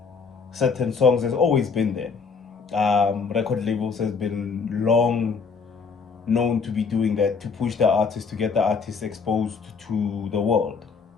certain songs has always been there. Record labels has been long known to be doing that to push the artist, to get the artist exposed to the world.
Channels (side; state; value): right; quieter; 5.3 dB